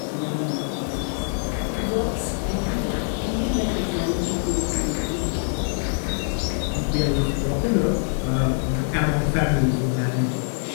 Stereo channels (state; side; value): silent; right; 61 dB below the other